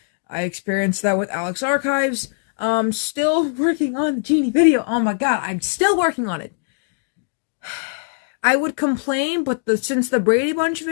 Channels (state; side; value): silent; right; digital silence